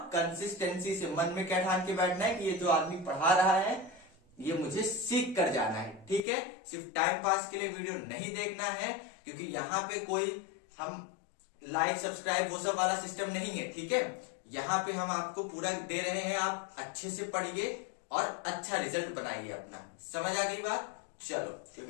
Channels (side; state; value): right; drops out; at 6.2 s